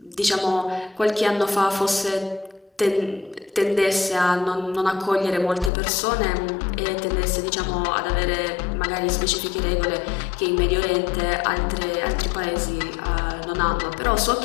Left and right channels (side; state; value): right; drops out; at 5.7 s